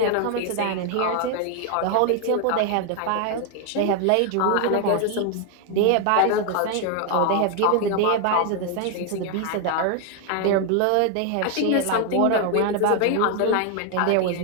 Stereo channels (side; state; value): both; different; correlation 0.01